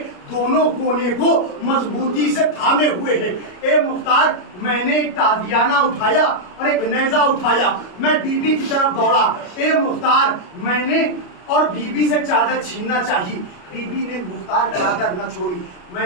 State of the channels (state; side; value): late; right; 33 ms